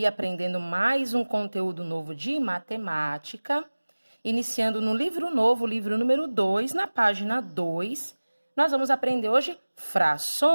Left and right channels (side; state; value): both; inverted; correlation -1.00